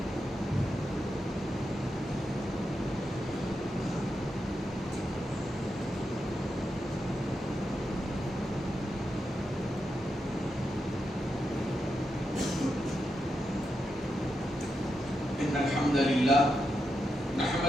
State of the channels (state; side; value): normal; both; correlation 0.86